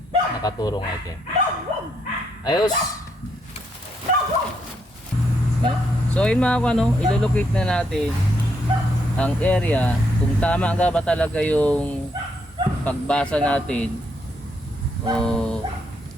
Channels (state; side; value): normal; both; correlation 0.76